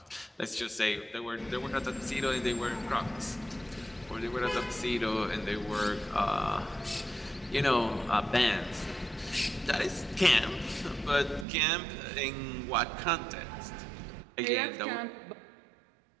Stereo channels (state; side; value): drops out; left; at 11.5 s